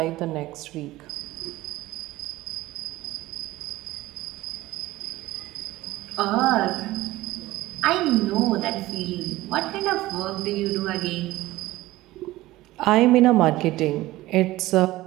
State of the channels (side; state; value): left; quieter; 17.4 dB